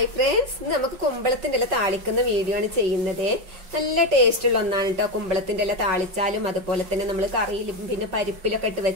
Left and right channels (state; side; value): late; left; 5.3 ms